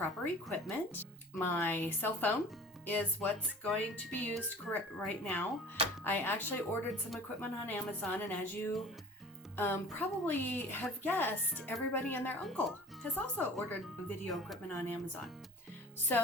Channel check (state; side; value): normal; both; correlation 0.43